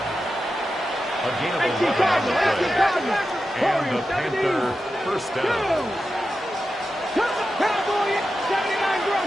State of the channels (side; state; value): both; normal; correlation 0.91